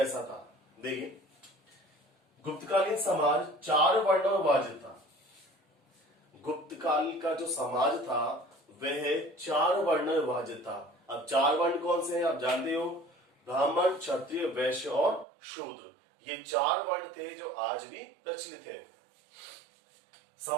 था। देखिए, गुप्तकालीन समाज 4 वर्णों में विभाजित था। गुप्तकाल का जो समाज था वह 4 वर्णों में विभाजित था। अब 4 वर्ण कौन से हैं आप जानते हो, ब्राह्मण, क्षत्रिय, वैश्य और शूद्र। ये 4 वर्ण थे जो आज भी प्रचलित है।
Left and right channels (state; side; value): drops out; left; at 15.2 s